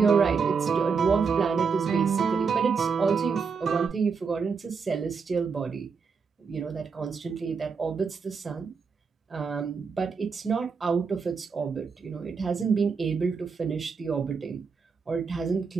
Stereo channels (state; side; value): quieter; left; 5.5 dB